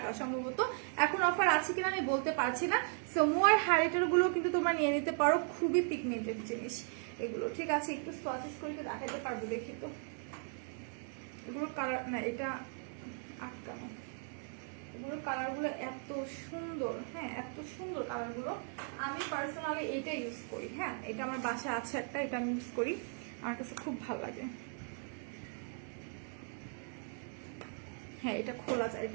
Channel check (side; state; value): left; silent; 53 dB below the other